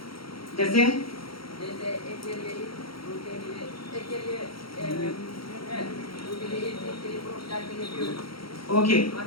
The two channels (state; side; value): late; right; 0.74 ms